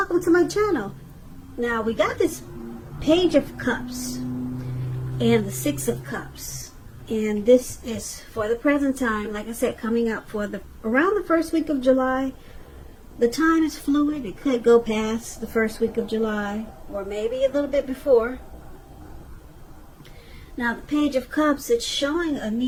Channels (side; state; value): both; identical; correlation 1.00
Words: to my channel. Now we got this Page of Cups and the Six of Cups, and this is for the present time, like I said, coming up for around the first week of July. The time is fluid. It could go past the first week of July or maybe a little bit before. Now the Page of Cups, it's showing a